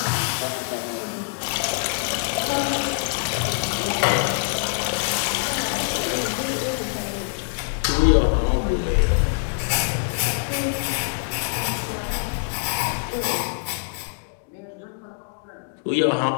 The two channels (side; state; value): right; silent; digital silence